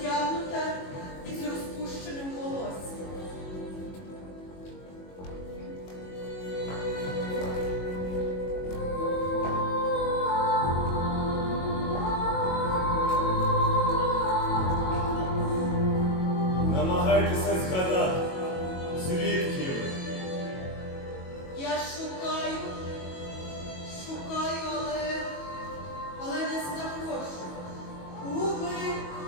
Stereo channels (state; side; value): late; right; 22 ms